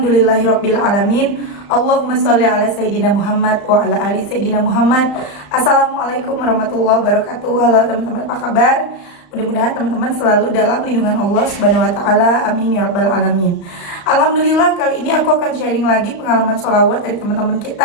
alamin. Allahumma sholli ala sayyidina Muhammad wa ala ali sayyidina Muhammad. Assalamualaikum warahmatullahi wabarakatuh. Halo teman-teman, apa kabar? Mudah-mudahan teman-teman selalu dalam lindungan Allah Subhanahu wa taala. Amin ya rabbal alamin. Alhamdulillah, kali ini aku akan sharing lagi pengalaman sholawat dari teman-teman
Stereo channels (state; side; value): late; right; 35 ms